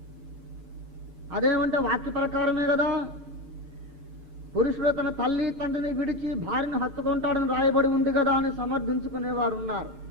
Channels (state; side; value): late; left; 7.1 ms